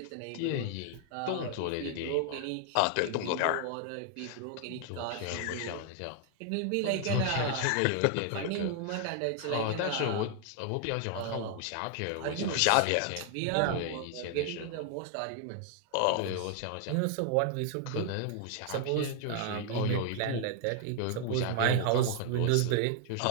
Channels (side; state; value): both; different; correlation 0.00